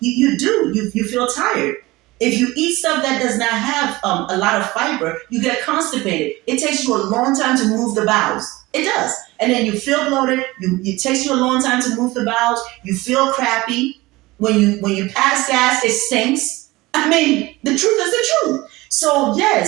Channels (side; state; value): left; quieter; 20.4 dB